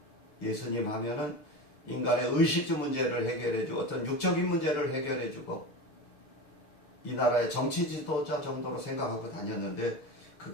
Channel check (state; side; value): late; right; 6.9 ms